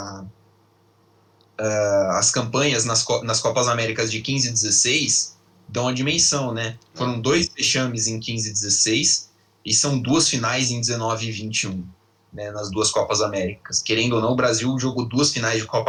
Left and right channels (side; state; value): both; identical; correlation 1.00